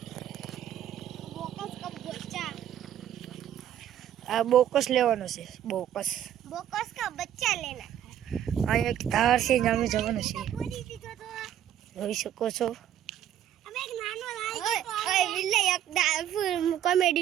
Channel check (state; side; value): quieter; left; 10.8 dB